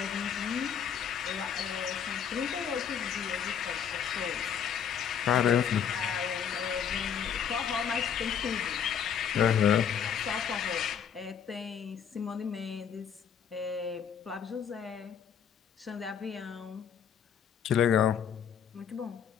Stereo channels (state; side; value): quieter; right; 8.0 dB